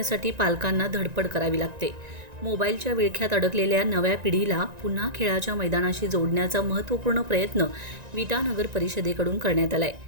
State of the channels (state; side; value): late; left; 1.9 ms